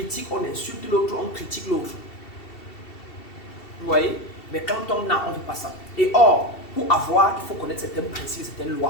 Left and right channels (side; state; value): right; late; 2.7 ms